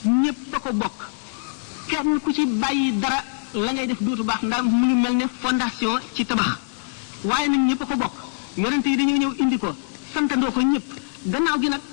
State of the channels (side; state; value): right; silent; digital silence